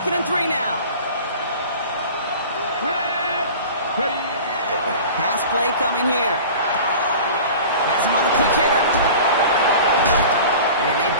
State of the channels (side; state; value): both; inverted; correlation -0.39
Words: and 3 now. Pass play coming here. Has him on the quick hitter. And they've